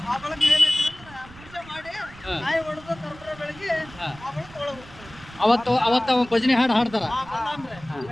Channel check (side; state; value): right; noise; rumble, 20 dB below the sound